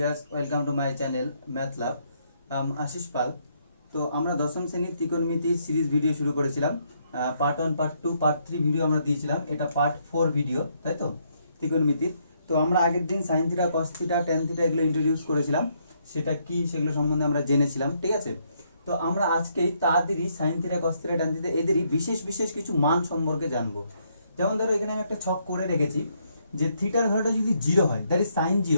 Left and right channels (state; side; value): inverted; both; correlation -0.73